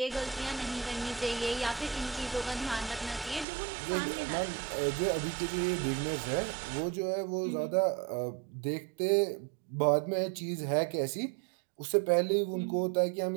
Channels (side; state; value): left; drops out; at 3.5 s